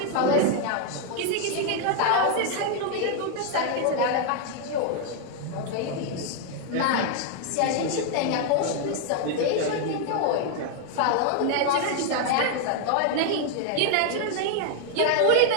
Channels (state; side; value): different; both; correlation 0.00